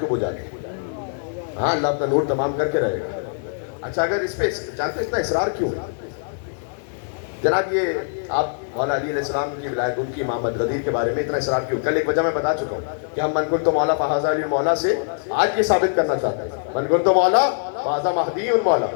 بجھا دیں. ہاں، اللہ اپنا نور تمام کر کے رہے گا. اچھا، اگر اس پہ جانتے اتنا اصرار کیوں ہے جناب؟ یہ آپ مولا علی علیہ السلام کی ولایت، ان کی امامت، غدیر کے بارے میں اتنا اصرار کیوں؟ کل ایک وجہ میں بتا چکا ہوں کہ ہم من کنت مولا فہذا علی مولا سے آج یہ ثابت کرنا چاہتے ہیں، من کنت مولا فہذا مہدی مولا.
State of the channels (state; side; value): silent; right; digital silence